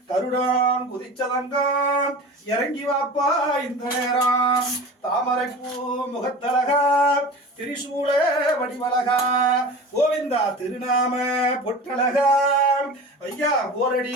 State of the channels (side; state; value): both; normal; correlation 0.35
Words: கருடான் குதிச்சதங்கம் இறங்கி வாப்பா இந்த நேரம் தாமரைப்பூ முகத்தழகா திரிசூல வடிவழகா கோவிந்தா திருநாம பொட்டழகா ஐயா